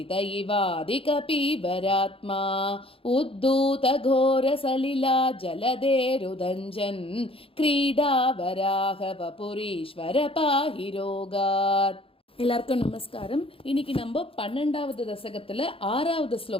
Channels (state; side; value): late; right; 0.27 ms